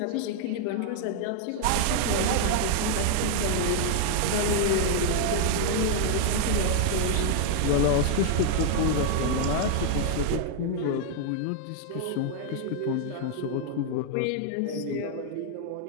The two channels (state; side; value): different; both; correlation 0.00